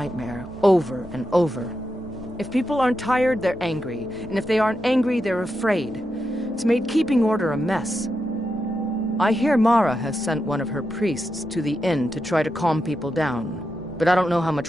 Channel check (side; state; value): both; normal; correlation 0.87